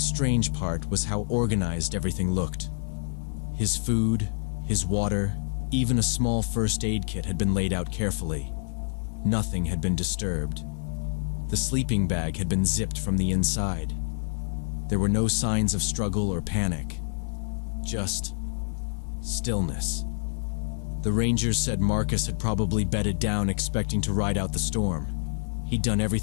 strange part was how organized everything looked. His food, his water, even a small first aid kit had been laid out carefully. Nothing had been disturbed. The sleeping bag had been zipped from the inside. There were no signs of struggle or panic. Just stillness. The rangers said Marcus had probably bedded down expecting to ride out the storm. He'd done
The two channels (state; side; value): silent; right; digital silence